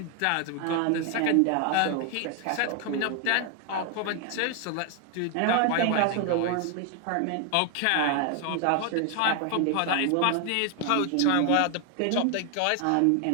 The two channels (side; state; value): both; different; correlation 0.00